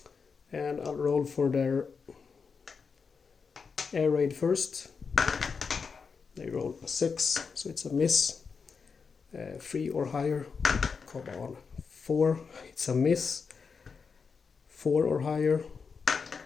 And I'll roll for their air raid first. They roll a 6, so it's a miss. 3 or higher. Come on. 4, it's a miss. 4 or higher.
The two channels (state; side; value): quieter; right; 5.4 dB